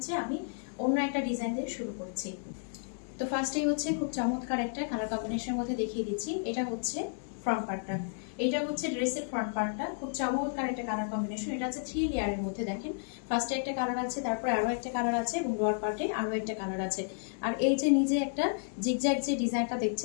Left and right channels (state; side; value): silent; right; digital silence